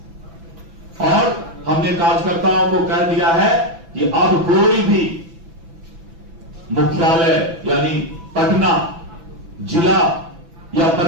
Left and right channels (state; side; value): late; left; 6.0 ms